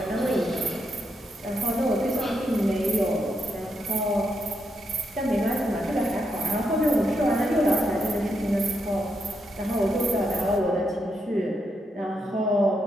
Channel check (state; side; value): normal; both; correlation 0.81